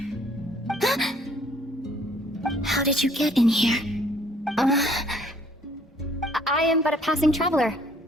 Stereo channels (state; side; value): normal; both; correlation 0.61